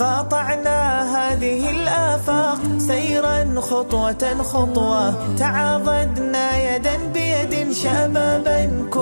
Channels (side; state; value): both; inverted; correlation -1.00